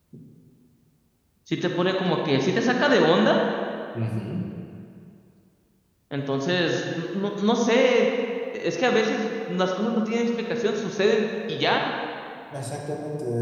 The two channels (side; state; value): both; identical; correlation 1.00